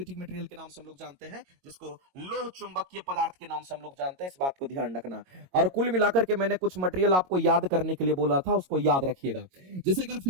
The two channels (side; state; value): left; late; 22 ms